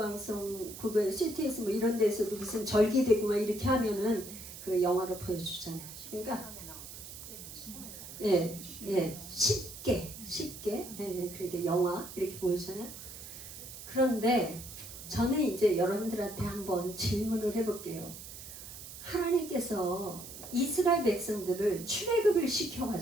그거 CTS 뭐 이런 데서도 무슨 절기되고 막 이렇게 하면은 그 영화로 보여주잖아요. 그러니까 쉽게 그렇게 영화 이렇게 보여주잖아요. 그런데 저는 이제 여러분들한테 한번 질문을 해볼게요. 하나님께서 이스라엘 백성들을 출애굽을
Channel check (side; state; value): right; noise; hiss, 13 dB below the sound